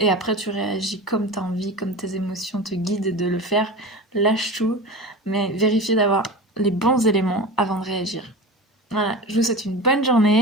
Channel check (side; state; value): both; normal; correlation 0.30